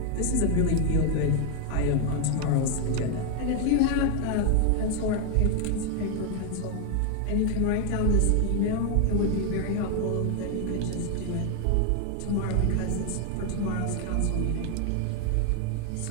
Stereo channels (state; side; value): different; both; correlation 0.00